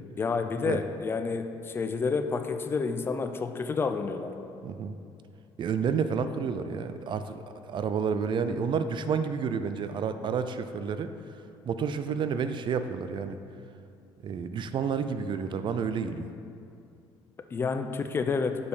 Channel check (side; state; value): both; normal; correlation 0.60